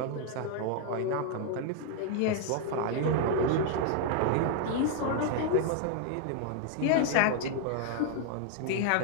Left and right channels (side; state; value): both; different; correlation 0.00